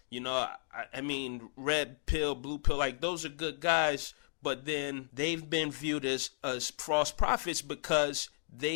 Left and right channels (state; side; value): silent; right; digital silence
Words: I mean, red pill, blue pill, like those are good guys. But then they've been viewed as false prophets because